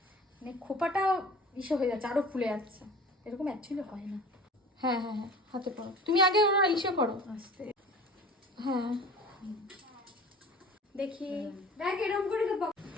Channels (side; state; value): both; normal; correlation 0.41